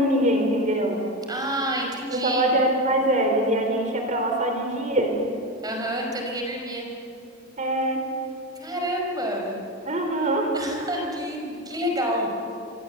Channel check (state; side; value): normal; both; correlation 0.17